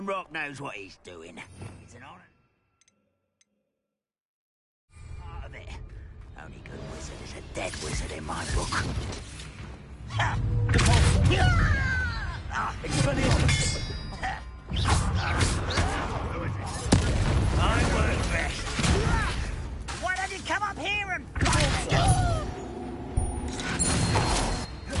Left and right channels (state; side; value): identical; both; correlation 1.00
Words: knows what he's doing. It's an honor. Part of it. Only good wizard is a dead wizard in my book. Ha! I won't rest. Why don't you come up here and